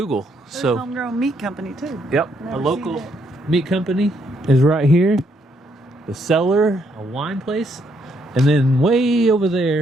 So homegrown meat company too. yep, Never a seen local that. meat company is right here. The cellar, a wine place, and then way over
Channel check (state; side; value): normal; both; correlation 0.73